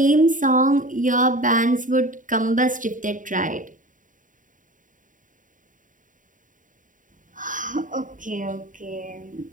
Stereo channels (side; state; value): left; late; 0.38 ms